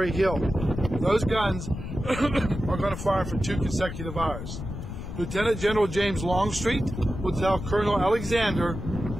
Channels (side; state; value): left; noise; rumble, 8 dB below the sound